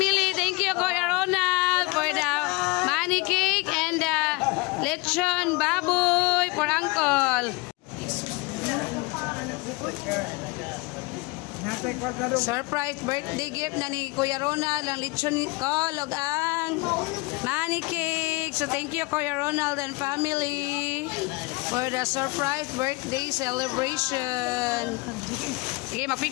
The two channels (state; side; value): quieter; right; 25.7 dB